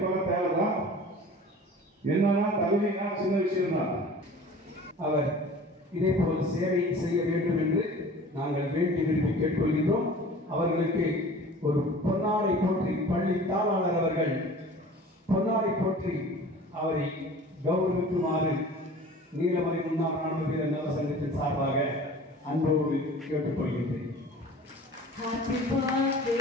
தேவைதான். என்னன்னா தகுதினா சின்ன விஷயம் தான். அவர் இதே போல் சேவை செய்ய வேண்டும் என்று நாங்கள் வேண்டி விரும்பி கேட்டுக்கொள்கின்றோம். அவர்களுக்கு ஒரு பொன்னாடை போற்றி பள்ளி தாளாளர் அவர்கள் பொன்னாடை போற்றி அவரை கௌரவிக்குமாறு நீலமலை முன்னாள் ராணுவ வீரர் நல சங்கத்தின் சார்பாக அன்போடு கேட்டுக்கொள்கின்றேன். Happy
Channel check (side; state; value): both; normal; correlation 0.43